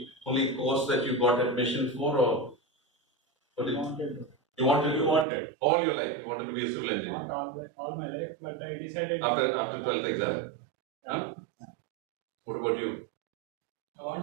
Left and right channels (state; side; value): drops out; left; at 5.2 s